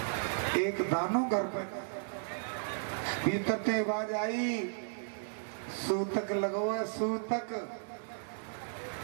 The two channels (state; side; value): silent; left; digital silence